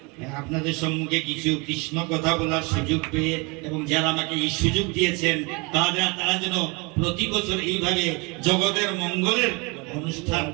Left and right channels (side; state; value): left; quieter; 28.5 dB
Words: আপনাদের সম্মুখে কিছু কৃষ্ণ কথা বলার সুযোগ পেয়ে, এবং যারা আমাকে এই সুযোগ দিয়েছেন তারা যেন প্রতি বছর এইভাবে জগতের মঙ্গলের অনুষ্ঠান